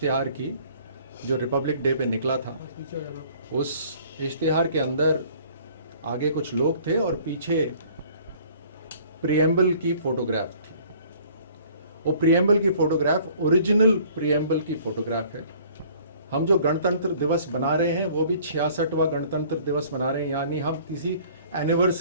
की, जो रिपब्लिक डे पे निकला था, उस इश्तिहार के अंदर आगे कुछ लोग थे और पीछे प्रियम्बल की फोटोग्राफ थी। वो प्रियम्बल की फोटोग्राफ ओरिजिनल प्रियम्बल की फोटोग्राफ है। हम जो गणतंत्र दिवस बना रहे हैं वो भी 66वां गणतंत्र दिवस बना रहे हैं, यानी हम किसी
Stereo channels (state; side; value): inverted; both; correlation -0.54